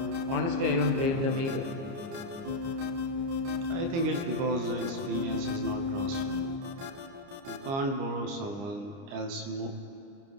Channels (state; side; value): late; left; 29 ms